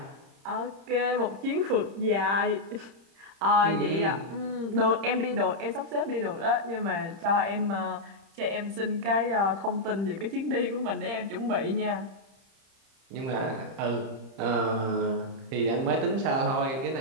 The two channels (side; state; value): left; late; 30 ms